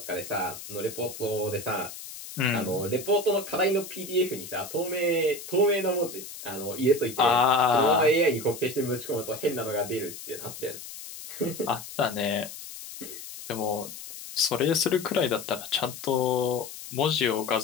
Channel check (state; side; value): noise; left; hiss, 12 dB below the sound